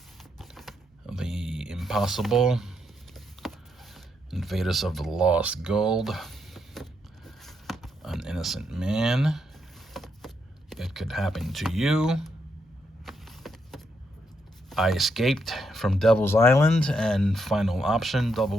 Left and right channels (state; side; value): normal; both; correlation 0.79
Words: The Impossible, Invaders of the Lost Gold, An Innocent Man, It Could Happen to You, I Escaped from Devil's Island, and Final Option